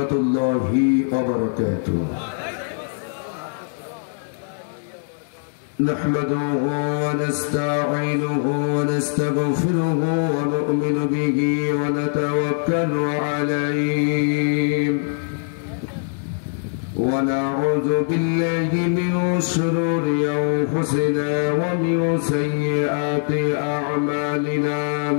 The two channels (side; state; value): right; silent; digital silence